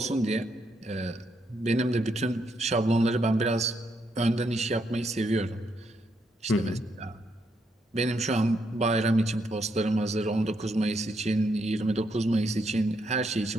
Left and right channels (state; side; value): normal; both; correlation 0.77